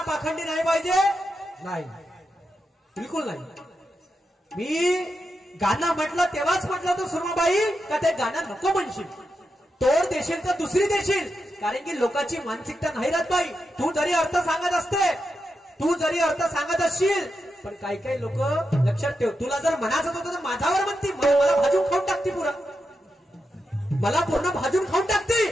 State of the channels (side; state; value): both; normal; correlation 0.87